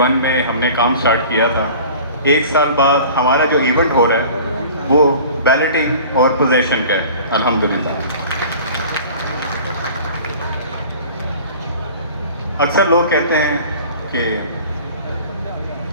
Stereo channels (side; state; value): both; inverted; correlation -0.43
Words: میں ہم نے کام سٹارٹ کیا تھا. 1 سال بعد ہمارا جو ایونٹ ہو رہا ہے وہ بیلٹنگ اور پوزیشن کا ہے الحمدللہ. اکثر لوگ کہتے ہیں کہ